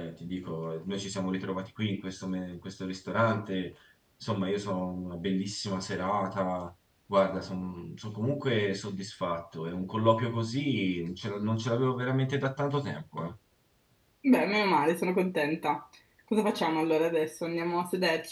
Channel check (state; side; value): identical; both; correlation 1.00